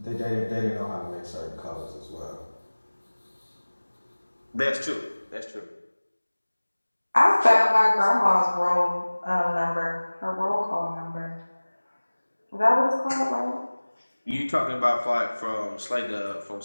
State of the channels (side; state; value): both; inverted; correlation -1.00